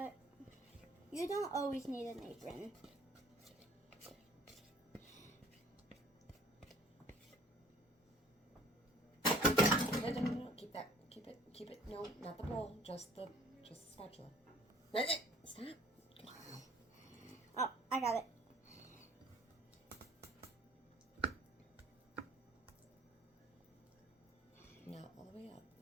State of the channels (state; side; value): normal; both; correlation 0.54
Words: you don't always need an apron. No. Keep that. Keep it. No, not the bowl. Just the spatula. Stop. Oh, I got it. No, all the way up.